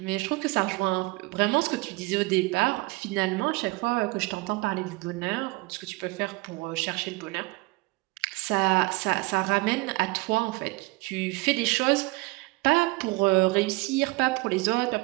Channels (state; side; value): quieter; left; 24.5 dB